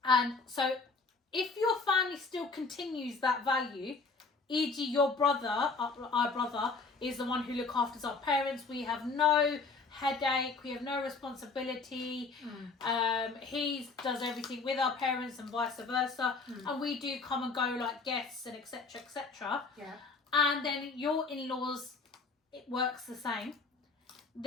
And so if your family still continues that value, e.g. your brother, our brother, is the one who looks after our parents. We have no headache, we have no responsibility. He does everything with our parents and vice versa. And we do come and go like guests and etc. etc. Yeah. And then your in-laws, it works the same.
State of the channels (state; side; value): quieter; right; 4.2 dB